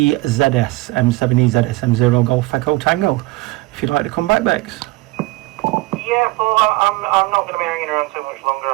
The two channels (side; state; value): left; quieter; 20.4 dB